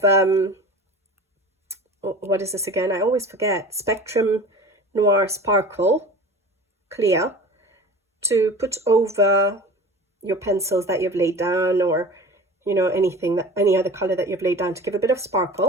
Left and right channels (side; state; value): both; normal; correlation 0.38